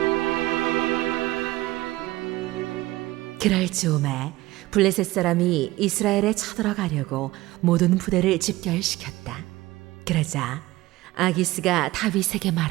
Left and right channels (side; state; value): left; quieter; 18.2 dB